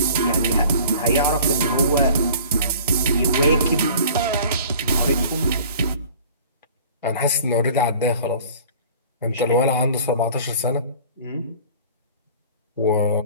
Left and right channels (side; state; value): both; inverted; correlation -0.46